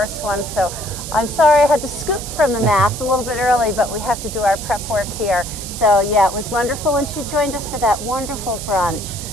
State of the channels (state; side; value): noise; right; hiss, 9 dB below the sound